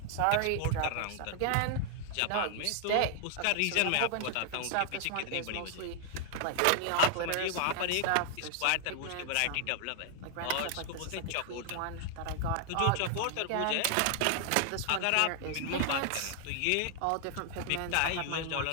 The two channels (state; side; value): different; both; correlation 0.00